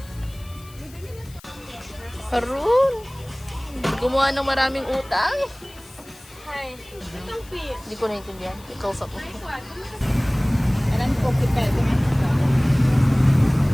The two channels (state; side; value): noise; left; hiss, 23 dB below the sound